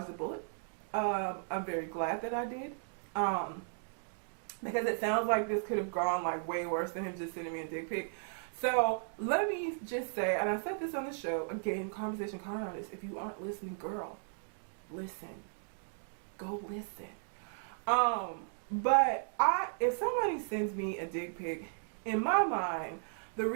the bullet. I'm very glad that I did. Because it sounds like this could have gone like way worse than him just sending me a dick pic. So let me just say, and I said this on the show, again, Conversation Card Artist, if you aren't listening, girl, listen. Go listen. But if somebody sends me a dick pic, in my mind, the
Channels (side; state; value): left; silent; digital silence